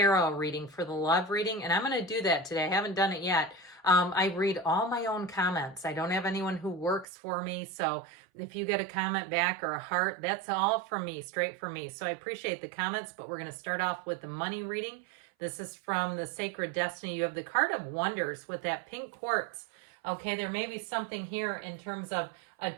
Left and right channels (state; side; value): drops out; left; at 7.1 s